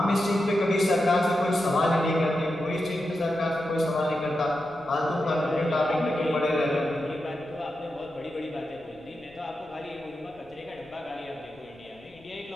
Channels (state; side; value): noise; left; rumble, 29 dB below the sound